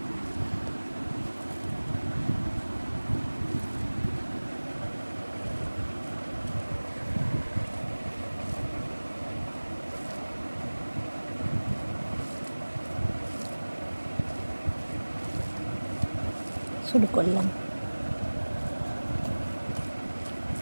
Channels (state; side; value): inverted; both; correlation -1.00